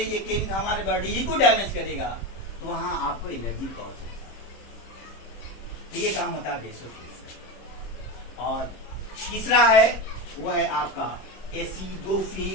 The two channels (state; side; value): late; right; 26 ms